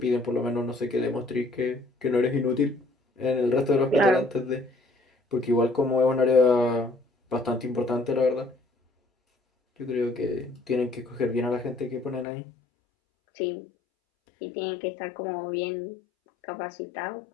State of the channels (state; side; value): drops out; right; at 12.2 s